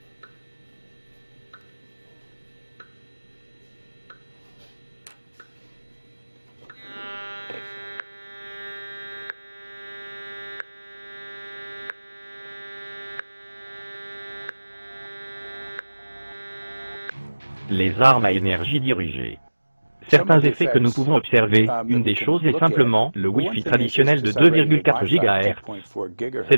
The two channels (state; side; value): inverted; both; correlation -1.00